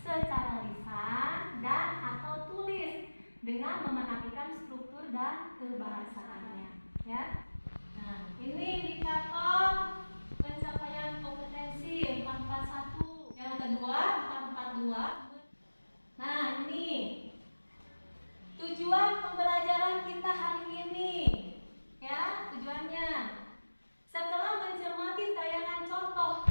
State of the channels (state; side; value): inverted; both; correlation -1.00